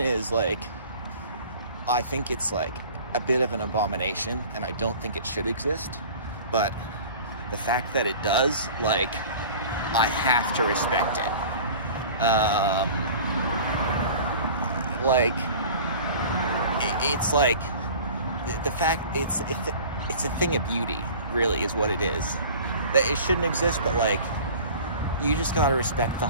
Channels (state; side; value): inverted; both; correlation -0.42